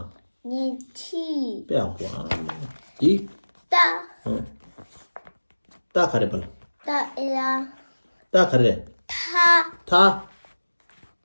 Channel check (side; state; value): both; inverted; correlation -1.00